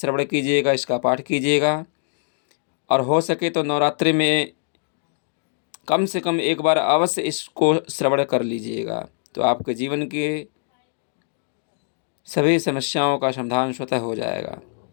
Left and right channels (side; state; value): right; silent; digital silence